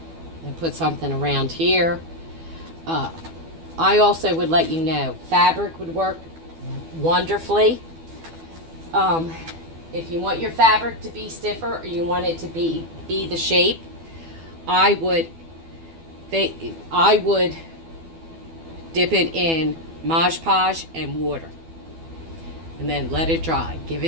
and put something around here. I also would let you know, fabric would work wonderfully. If you want your fabric to be stiffer or you want it to be the shape, I would dip it in Mod Podge and water. And then let it dry. Give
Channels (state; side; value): late; left; 12 ms